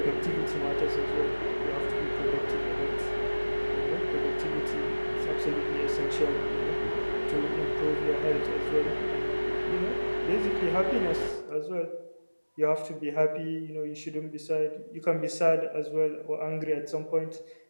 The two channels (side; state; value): both; inverted; correlation -1.00